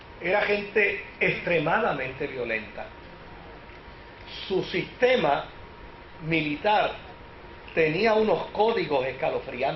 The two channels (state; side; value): identical; both; correlation 1.00